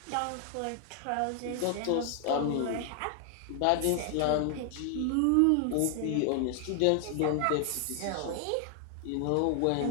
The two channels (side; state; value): both; different; correlation 0.00